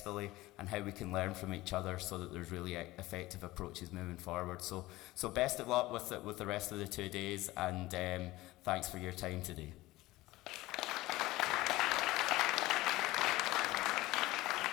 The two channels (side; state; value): right; quieter; 18.5 dB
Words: and how we can learn from each other, so that there's really effective approaches moving forward. So best of luck with the rest of the 2 days, and thanks for your time today.